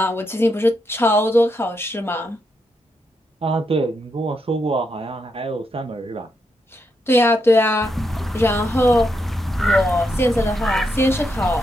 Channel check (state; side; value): normal; both; correlation 0.81